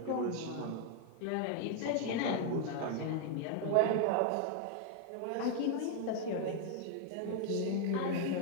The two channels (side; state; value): both; different; correlation 0.00